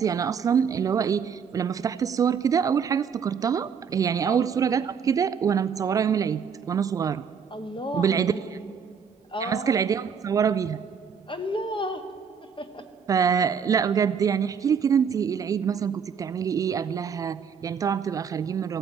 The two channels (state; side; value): quieter; left; 6.8 dB